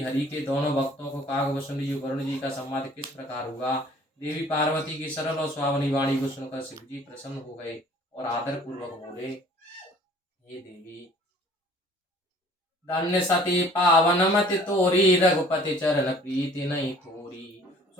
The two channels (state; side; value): normal; both; correlation 0.52